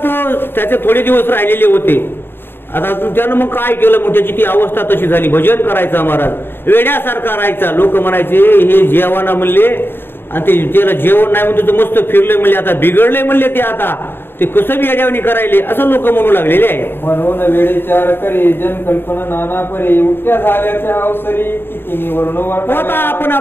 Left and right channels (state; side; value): late; right; 0.10 ms